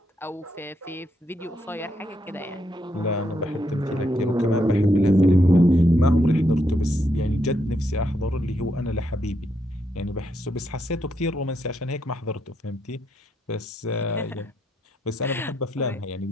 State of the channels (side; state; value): both; normal; correlation 0.78